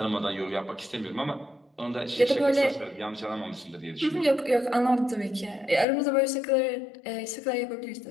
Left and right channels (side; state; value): right; drops out; at 5.9 s